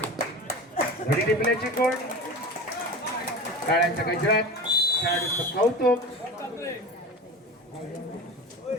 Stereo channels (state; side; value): normal; both; correlation 0.30